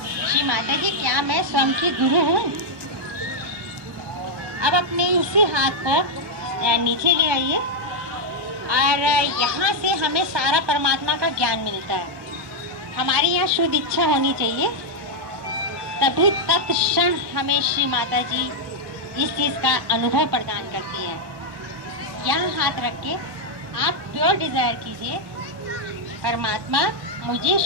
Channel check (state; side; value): late; left; 1.1 ms